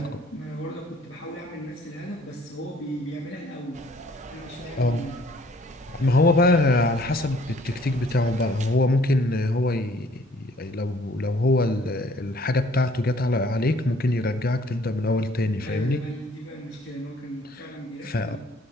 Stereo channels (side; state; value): both; normal; correlation 0.59